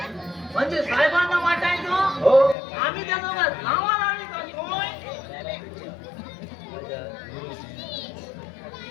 म्हणजे साहेबांना वाटायचं हो आम्ही त्या दोघात नावा लावली करतोय.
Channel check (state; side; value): drops out; right; at 2.6 s